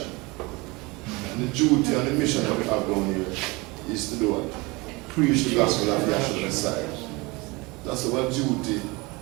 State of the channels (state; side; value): quieter; left; 24.7 dB